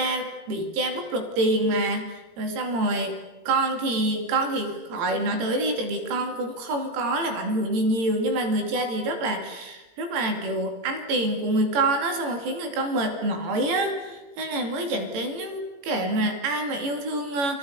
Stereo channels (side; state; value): left; late; 18 ms